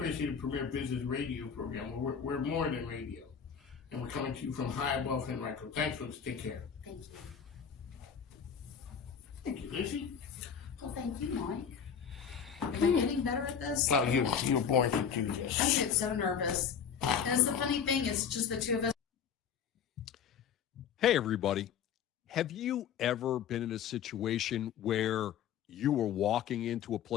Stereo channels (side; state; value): right; quieter; 7.6 dB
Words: to say the premier business radio program. We're more than radio. And we're coming to you from high above Henrico. Thanks, folks. Take care. Thank you. Thank you, Lizzie. Well, thank you, Mike. Am I getting better at this? Oh, you were born to do this. I get so nervous. That's the funny thing. It's just the two of us. Hey, everybody. Have you ever been in a situation where you were walking into a